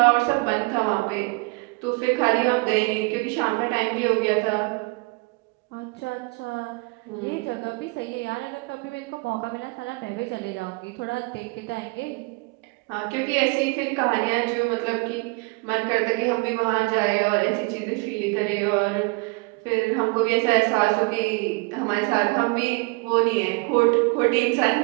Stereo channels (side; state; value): left; quieter; 28.6 dB